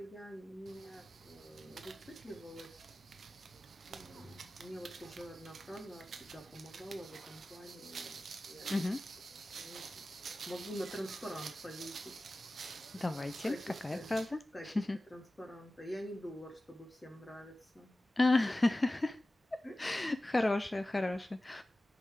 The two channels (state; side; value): normal; both; correlation 0.96